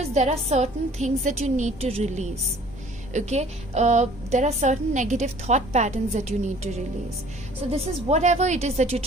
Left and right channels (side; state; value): both; normal; correlation 0.52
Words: there are certain things that you need to release. Okay, there are certain negative thought patterns that you need to release. So this is whatever it is that you're